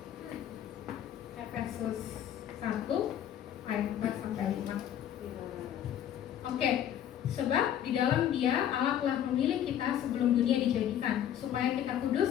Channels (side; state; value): right; quieter; 10.4 dB